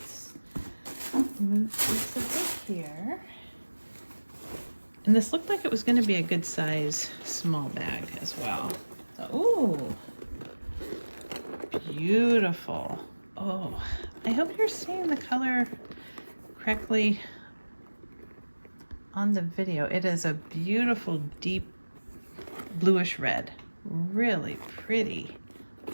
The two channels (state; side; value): inverted; both; correlation -1.00